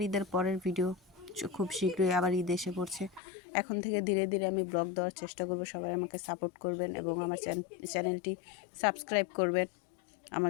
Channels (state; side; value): drops out; right; at 3.2 s